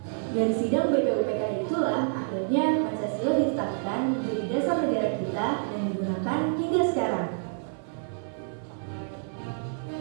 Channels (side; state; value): left; silent; 59 dB below the other